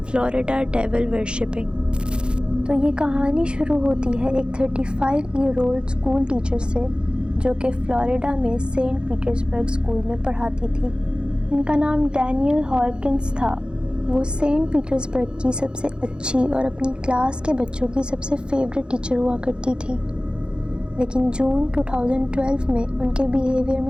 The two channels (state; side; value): late; left; 0.052 ms